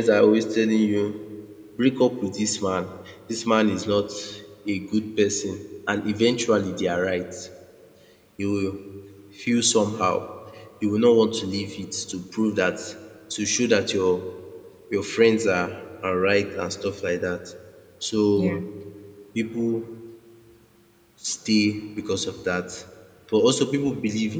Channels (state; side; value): identical; both; correlation 1.00